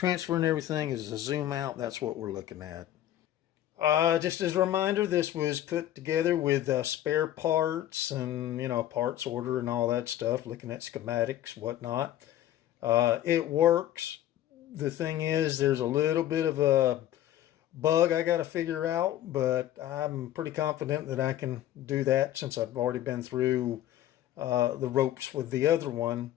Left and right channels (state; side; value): quieter; right; 12.7 dB